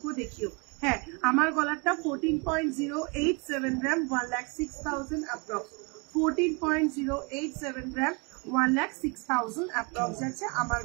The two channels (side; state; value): left; quieter; 31.2 dB